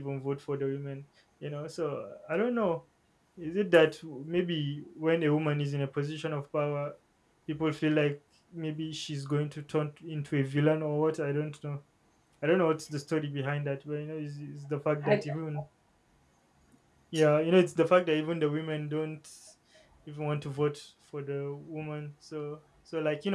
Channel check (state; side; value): identical; both; correlation 1.00